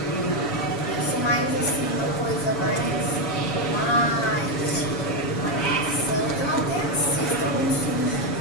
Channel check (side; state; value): right; late; 7.1 ms